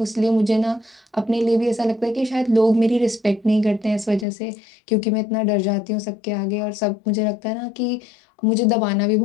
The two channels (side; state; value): right; drops out; at 4.2 s